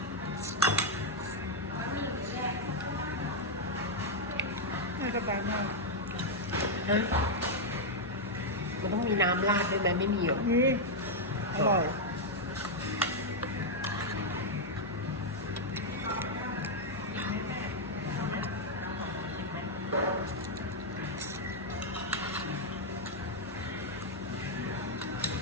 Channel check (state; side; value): normal; both; correlation -0.02